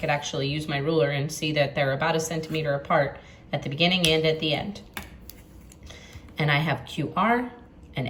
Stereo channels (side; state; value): both; identical; correlation 1.00